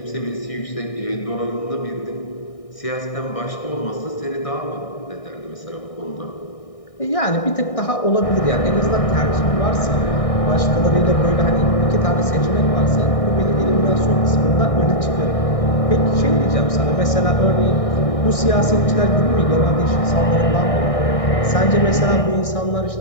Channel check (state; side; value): late; right; 1.6 ms